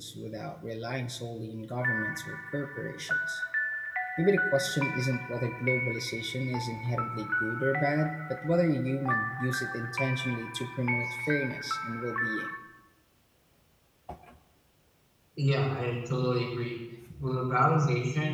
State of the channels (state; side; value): identical; both; correlation 1.00